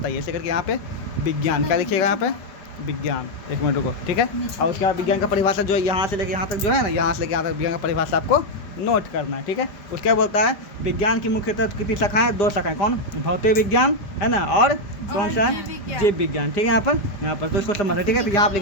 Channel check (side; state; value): right; late; 5.0 ms